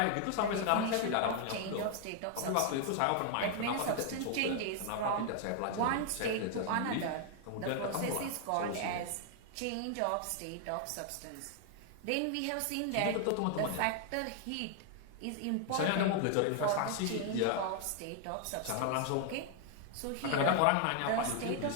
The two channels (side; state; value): both; different; correlation 0.00